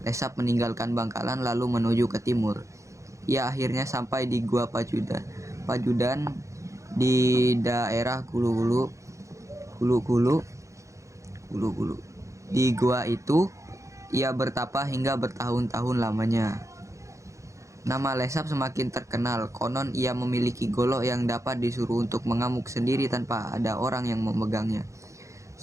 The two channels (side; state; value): left; late; 0.15 ms